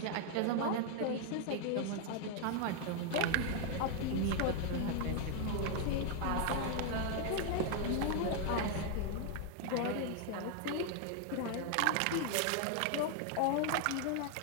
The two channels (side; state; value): both; different; correlation 0.00